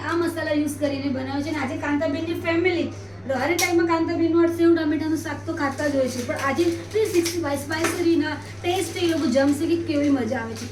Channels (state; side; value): identical; both; correlation 1.00